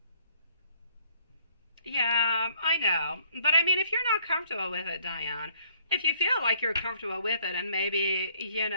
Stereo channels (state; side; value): inverted; both; correlation -0.62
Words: Yeah, I know. But I mean, if you're not comfortable with it, Diane, if you feel like you're comfortable with it and maybe, you